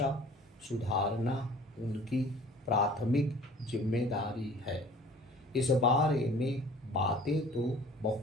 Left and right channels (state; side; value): normal; both; correlation 0.48